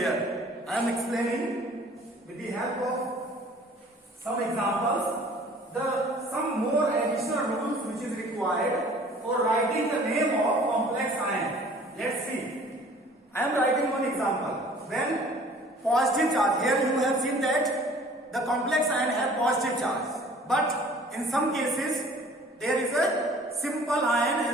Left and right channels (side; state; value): both; normal; correlation 0.51